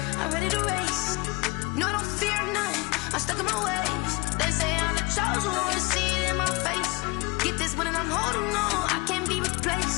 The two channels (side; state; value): right; quieter; 24.4 dB